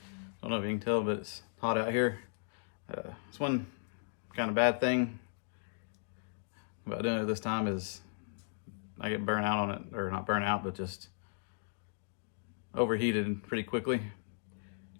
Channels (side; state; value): right; silent; digital silence